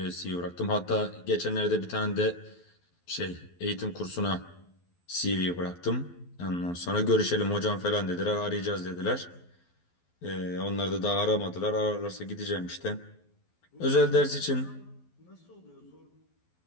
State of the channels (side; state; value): right; late; 12 ms